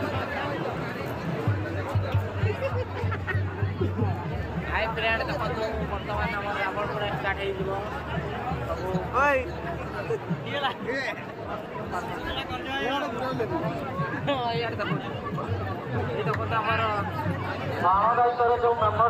ହାଇ ଫ୍ରେଣ୍ଡ ଦେଖନ୍ତୁ, ବର୍ତ୍ତମାନ ଆମର ରାବଣ ପୋଡ଼ା ଷ୍ଟାର୍ଟ ହେଇଯିବ। ଏଇ ଦେଖନ୍ତୁ ଆମର ବାଣ ଦାୟିତ୍ୱରେ ଯେଉଁ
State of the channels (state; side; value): identical; both; correlation 1.00